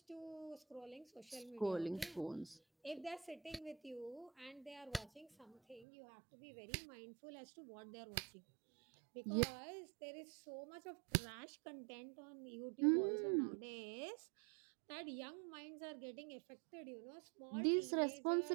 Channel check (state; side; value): drops out; left; at 5.9 s